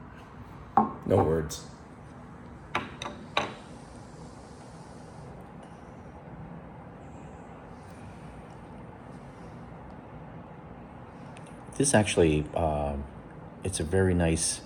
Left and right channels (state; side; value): identical; both; correlation 1.00